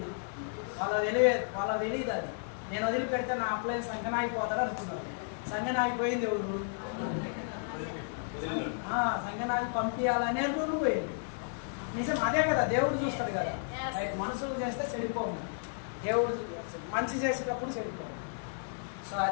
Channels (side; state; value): right; silent; digital silence